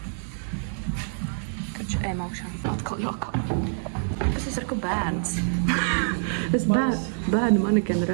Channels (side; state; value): left; silent; 61 dB below the other